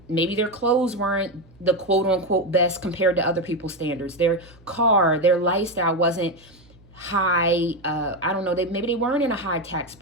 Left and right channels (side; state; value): right; noise; hum, 27 dB below the sound